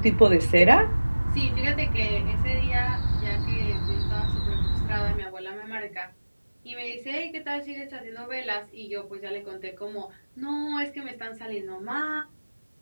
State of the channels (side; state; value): both; inverted; correlation -1.00